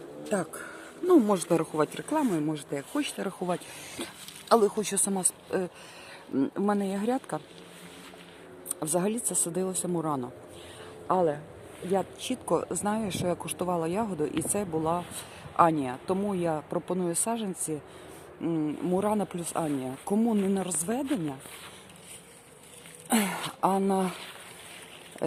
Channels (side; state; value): both; identical; correlation 1.00